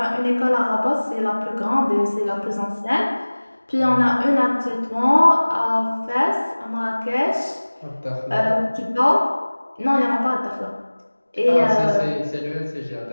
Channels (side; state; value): both; inverted; correlation -1.00